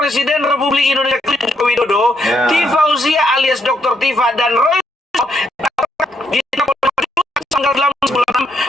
Republik Indonesia Joko Widodo, Ya. Tifauziah alias Dr. Tifa dan Roy tanggal 8 bulan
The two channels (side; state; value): both; normal; correlation 0.76